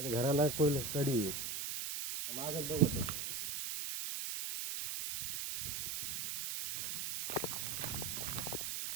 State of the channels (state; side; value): noise; right; hiss, 3 dB below the sound